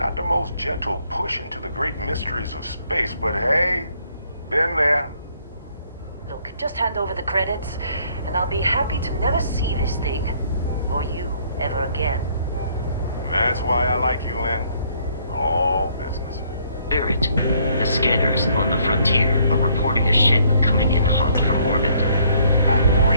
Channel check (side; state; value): both; inverted; correlation -0.65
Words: the most gentle push into the great mysteries of space, but hey, been there. Look, just hand over the credits, and I'll be happy to never see this thing, or you, ever again. That's why I like you, Lynn. All business. Barrett, the scanners on the frontier are reporting a ship coming in hot from orbit. I